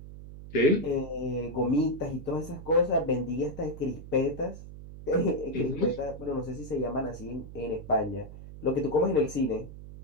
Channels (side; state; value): right; noise; hum, 14 dB below the sound